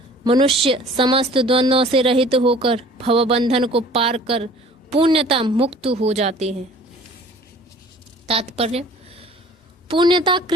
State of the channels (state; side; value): normal; both; correlation 0.49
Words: मनुष्य समस्त द्वंद्वों से रहित होकर भवबंधन को पार कर पुण्यता मुक्त हो जाते हैं। तात्पर्य: पुण्यता